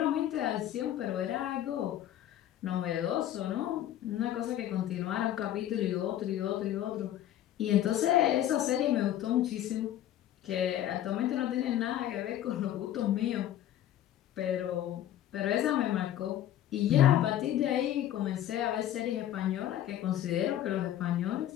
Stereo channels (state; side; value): quieter; right; 12.0 dB